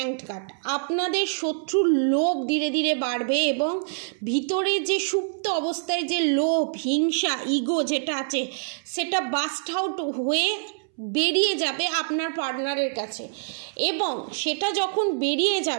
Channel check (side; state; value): left; silent; 61 dB below the other